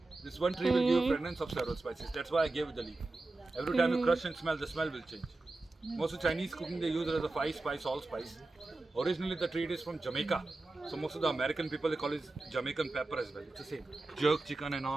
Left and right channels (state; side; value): quieter; left; 3.1 dB